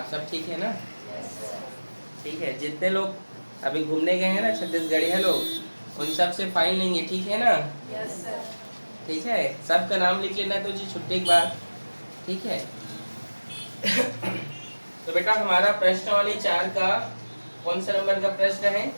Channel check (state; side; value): inverted; both; correlation -1.00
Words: सब ठीक है ना? Yes sir. ठीक है, जितने लोग अभी घूमने गए हैं ना छत्तीसगढ़िया लोग, उन सब से फाइन लेंगे, ठीक है ना? Yes sir. ठीक है, सबका नाम लिख लेना तो जी छुट्टी के बाद, ठीक है? तो बेटा हमारा प्रश्नावली 4 का कौन सा नंबर का प्रश्न है?